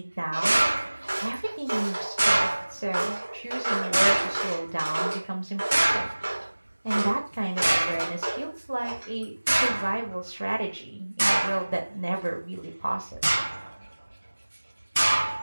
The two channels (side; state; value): both; inverted; correlation -1.00